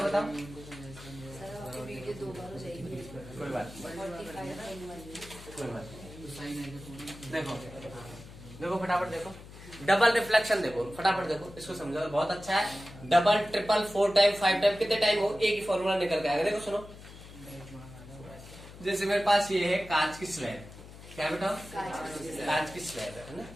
बताओ? कोई बात देखो देखो फटाफट देखो, डबल रिफ्लेक्शन देखो फटाफट देखो, इसको समझो, बहुत अच्छा है। डबल ट्रिपल 4 टाइम 5 टाइम कितने टाइम हो, एक ही फॉर्मूला निकल के आएगा। देखो सुनो, जैसे मेरे पास ये है कांच की स्लैब, क्या बेटा? कांच की स्लैब है ना,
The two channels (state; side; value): noise; left; hum, 17 dB below the sound